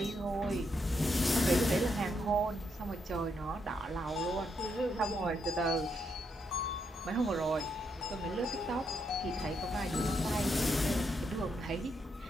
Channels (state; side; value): normal; both; correlation 0.79